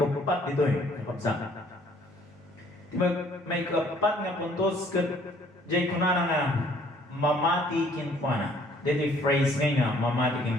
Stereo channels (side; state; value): both; normal; correlation 0.60